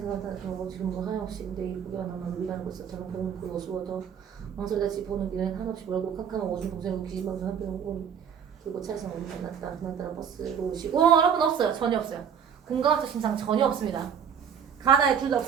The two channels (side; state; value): left; quieter; 7.9 dB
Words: 그러고 지금 뭐 하염없이 근데 이쁘게만 남아 위반하고 있어. 저는 그런 그 어수워도 망설여지 보는 길은 한없이 멀고 캄캄한 오줌 동생으로 기진방송 한편에 오고 그리고 차에서 어디 만났다. 그날따라 버스로 오시고 여러분 없어요. 전혀 없어요. 공감학적 심상 전혀 없습니다. 가나에 둘 다